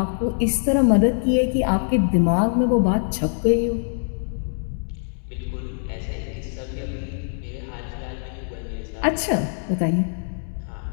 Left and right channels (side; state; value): right; silent; digital silence